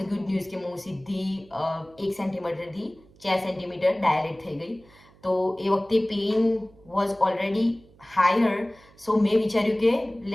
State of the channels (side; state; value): right; noise; hum, 27 dB below the sound